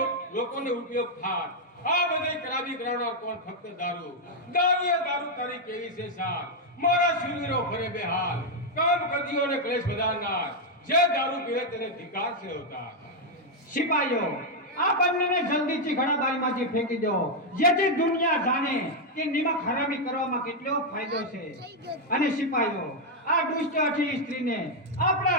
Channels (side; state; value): both; normal; correlation 0.00